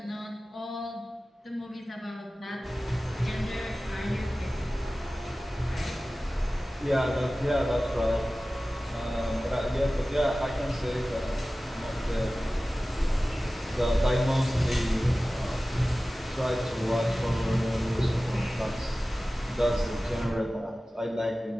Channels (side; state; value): both; normal; correlation 0.96